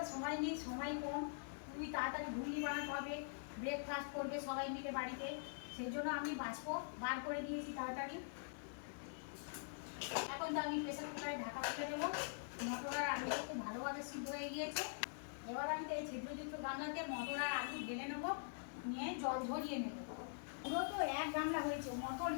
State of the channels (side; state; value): right; silent; digital silence